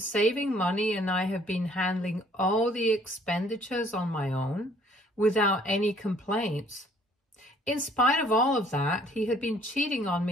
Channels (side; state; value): both; normal; correlation 0.59